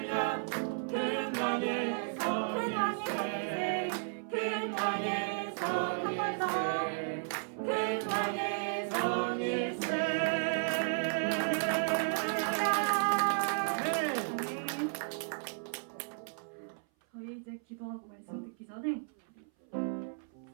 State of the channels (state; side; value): silent; left; 55 dB below the other